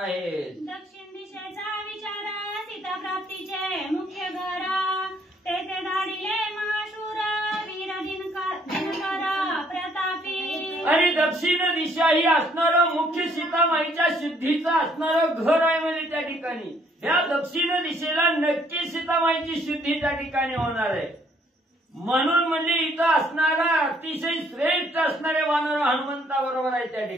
दक्षिण दिशेचा विचार सीता प्राप्तीचे मुख्य घर तेथे धाडिले महाशूर वीर दिनकर प्रतापी. आणि दक्षिण दिशा ही असणारं मुख्य सीतामाईच्या शुद्धीचं असणारं घर आहे म्हणजे त्या ठिकाणी या दक्षिण दिशेला नक्की सीतामाईची शुद्धी त्या ठिकाणी होणार आहे. म्हणून म्हणजे इथं असणारा अतिशय श्रेष्ठ असणारे वानर हनुमंताबरोबर आहे त्या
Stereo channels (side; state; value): both; normal; correlation 0.65